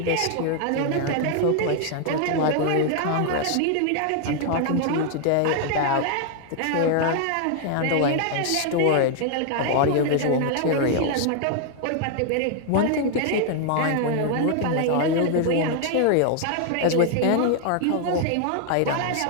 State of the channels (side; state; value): both; different; correlation 0.00